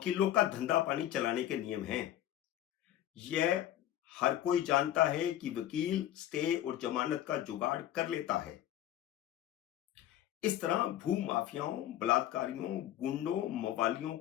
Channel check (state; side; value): quieter; right; 12.3 dB